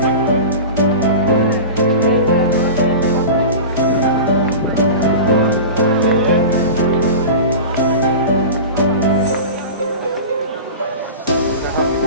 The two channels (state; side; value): inverted; both; correlation -0.31